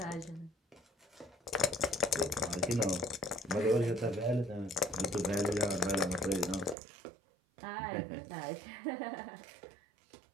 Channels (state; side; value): drops out; left; at 6.8 s